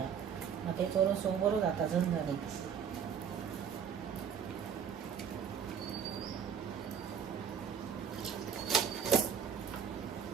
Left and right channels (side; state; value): left; quieter; 7.8 dB